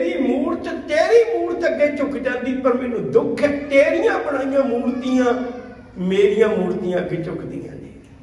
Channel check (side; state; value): both; identical; correlation 1.00